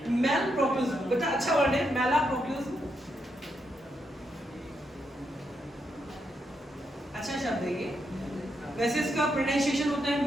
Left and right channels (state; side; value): normal; both; correlation 0.81